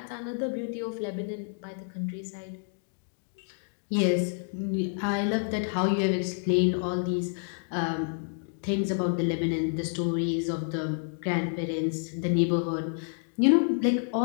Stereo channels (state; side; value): silent; right; 56 dB below the other